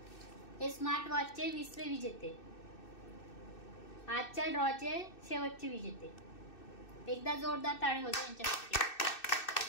हे स्मार्ट वॉचचे 20वे विजेते. आजच्या ड्रॉचे शेवटचे विजेते. एकदा जोरदार टाळी होते यांच्यासाठी.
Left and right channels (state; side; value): late; right; 2.6 ms